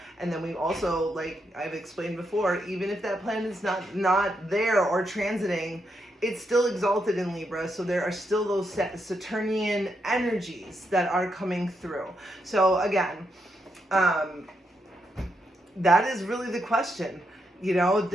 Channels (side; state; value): both; normal; correlation 0.81